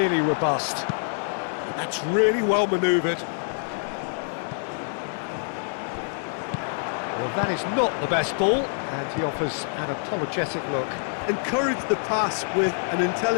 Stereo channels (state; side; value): silent; right; digital silence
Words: robust. That's really well manoeuvred. Well, that is not the best ball, and he offers an apologetic look. Encouraged the pass with an